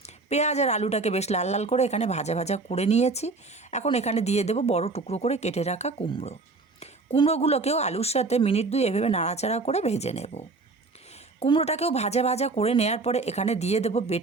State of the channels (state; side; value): quieter; left; 3.7 dB